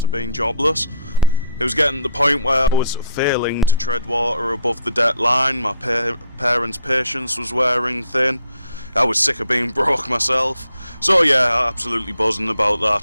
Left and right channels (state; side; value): inverted; both; correlation -0.65